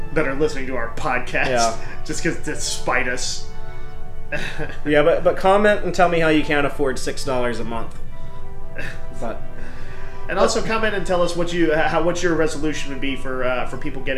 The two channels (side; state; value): both; identical; correlation 1.00